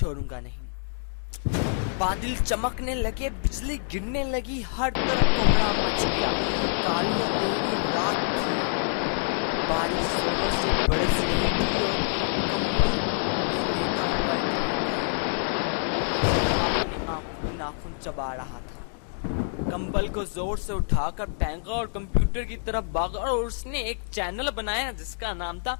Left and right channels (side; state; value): right; silent; digital silence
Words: नहीं। बादल चमकने लगे, बिजली गिरने लगी, हर तरफ कोहरा मच गया, कालियां गहरी रात थी, बारिश से बरस रही थी, नाखून चबा रहा था। कंबल को जोर से उठाकर फेंका और कंप्यूटर की तरफ भागा और उसने एक चैनल बनाया जिसका नाम था